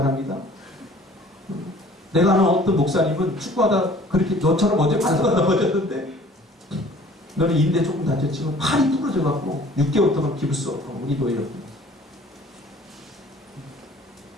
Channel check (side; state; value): both; normal; correlation 0.51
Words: 내가 아는 어떤 목사님은 축구하다 그렇게 너처럼 어제 발사가 넘어졌는데 너는 인대 조금 다쳤지만 팔이 부러져갖고 6개월 동안 기부 수 없고 우리 노예로